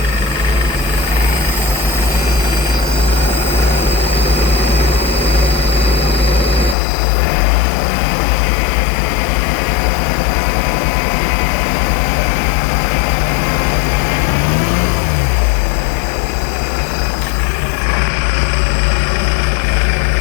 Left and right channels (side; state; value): right; drops out; at 6.8 s